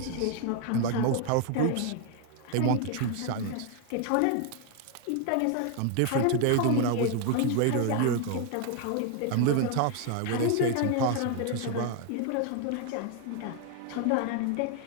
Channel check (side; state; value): both; different; correlation 0.01